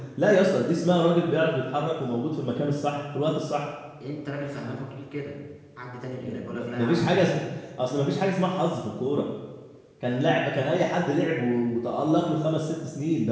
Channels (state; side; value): identical; both; correlation 1.00